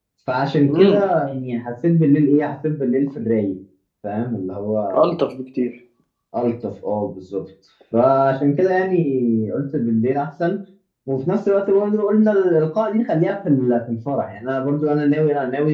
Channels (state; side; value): identical; both; correlation 1.00